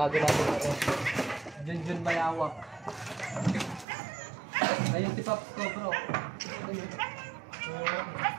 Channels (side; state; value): left; drops out; at 3.9 s